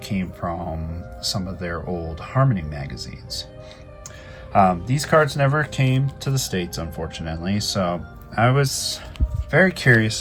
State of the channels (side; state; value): both; identical; correlation 1.00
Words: came from some of their old Harmony magazines. These cards never came to the States, unfortunately, so I was very